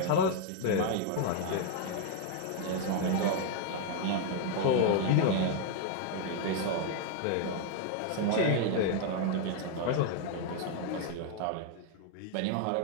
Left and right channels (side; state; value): both; different; correlation 0.00